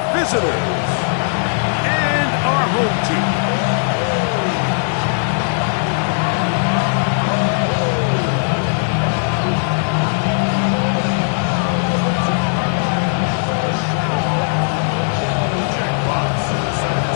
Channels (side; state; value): right; silent; digital silence